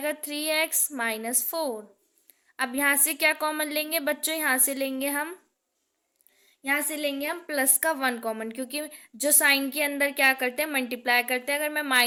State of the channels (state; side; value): identical; both; correlation 1.00